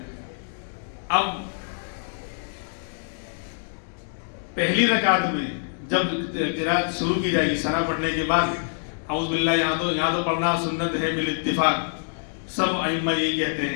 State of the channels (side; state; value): right; silent; digital silence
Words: اب پہلی رکعت میں جب قرات شروع کی جائے گی ثنا پڑھنے کے بعد اعوذ باللہ یہاں تو پڑھنا سنت ہے بالاتفاق, سب ائمہ یہی کہتے